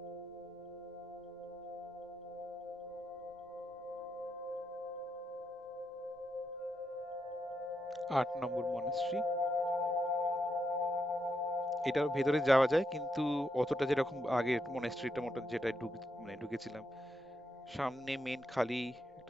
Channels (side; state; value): both; normal; correlation 0.82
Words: আট নম্বর মনাস্ট্রি। এটার ভেতরে যাওয়া যায় কিন্তু অতটা যেরকম আগের মনাস্ট্রিটা মতো যেটা মানে ঢুকেছিলাম, সামনে মেন খালি